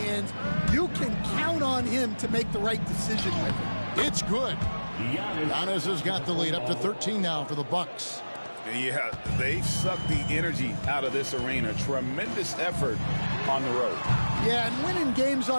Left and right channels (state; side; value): inverted; both; correlation -1.00